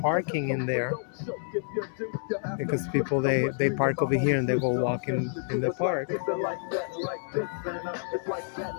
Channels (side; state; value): right; silent; digital silence